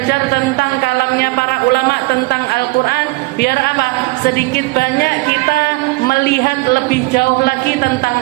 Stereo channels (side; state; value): left; quieter; 24.4 dB